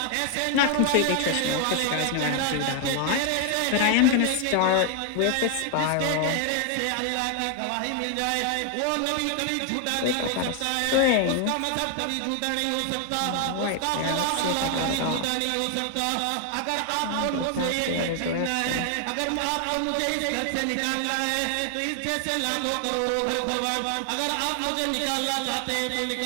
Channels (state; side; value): different; both; correlation 0.00